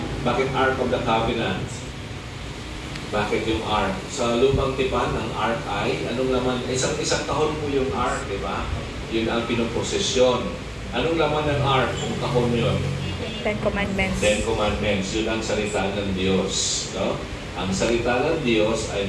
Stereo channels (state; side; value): identical; both; correlation 1.00